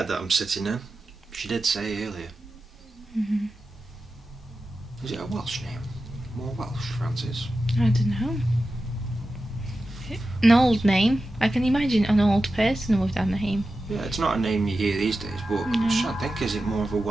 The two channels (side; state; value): both; normal; correlation 0.92